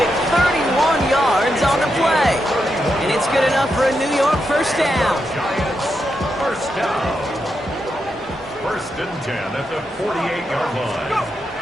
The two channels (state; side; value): normal; both; correlation 0.85